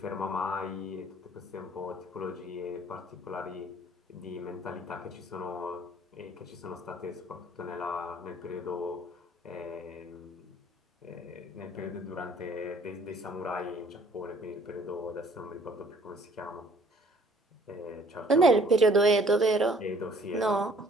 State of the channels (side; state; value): both; normal; correlation 0.57